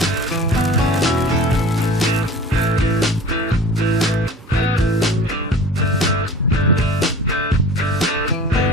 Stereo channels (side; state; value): both; normal; correlation 0.41